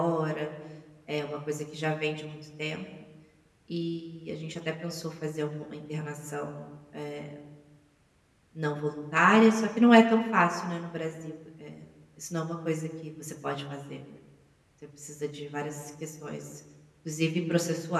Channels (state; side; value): identical; both; correlation 1.00